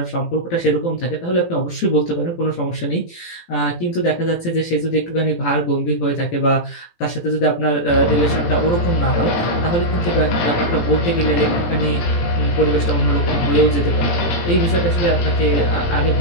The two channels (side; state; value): right; late; 18 ms